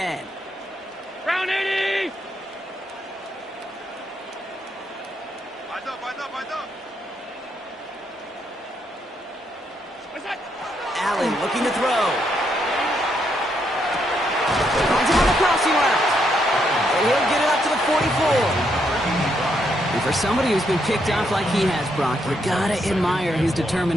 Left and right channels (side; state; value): both; normal; correlation 0.77